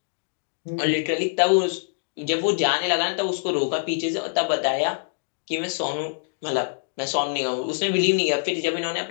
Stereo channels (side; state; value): right; silent; digital silence